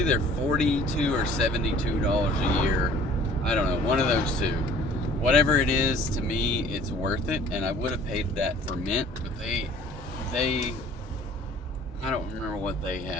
$42 or $72 a year, I don't know, one of those two. Whatever it is, to me, it's worth it, and I would have paid that for Mint, but they I don't remember what they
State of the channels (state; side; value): normal; both; correlation 0.51